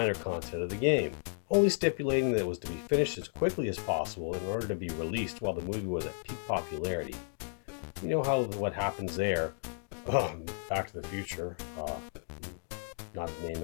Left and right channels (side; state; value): right; silent; digital silence